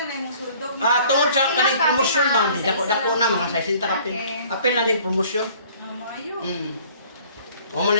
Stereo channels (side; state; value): both; inverted; correlation -0.54